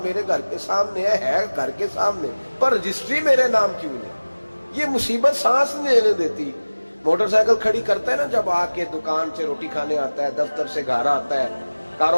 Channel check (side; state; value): both; inverted; correlation -1.00